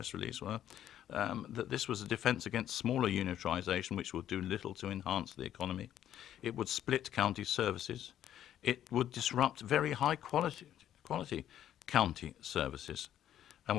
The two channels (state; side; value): quieter; right; 11.2 dB